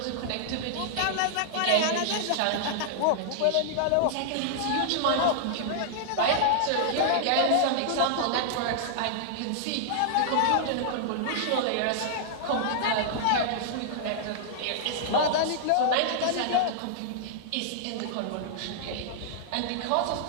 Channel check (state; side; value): different; both; correlation -0.01